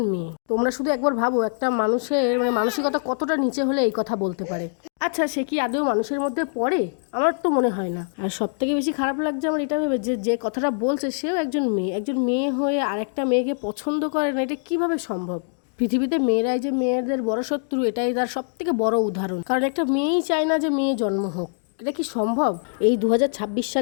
মেয়ে। তোমরা শুধু একবার ভাবো, একটা মানুষের মানসিকতা কতটা নিচে হলে এই কথা বলতে পারে। আচ্ছা, সে কি আদৌ মানুষের মধ্যে পড়ে? আমার তো মনে হয় না। আর সব থেকে বেশি খারাপ লাগছে আমার এটা ভেবে যে যে কথাটা বলছে সেও একজন মেয়ে হয়ে আরেকটা মেয়েকে পছন্দ করে না, এটা কিভাবে সম্ভব? পৃথিবীতে মেয়েরাই যে মেয়েদের বড় শত্রু, এটাই তার সব থেকে বড় উদাহরণ। কারণ একটা মেয়েই চায় না যে মেয়ে জন্ম হোক। এটা কি সম্ভব? এই 2026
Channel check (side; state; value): right; silent; digital silence